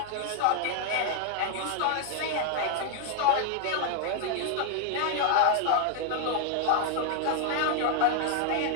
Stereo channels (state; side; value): different; both; correlation 0.00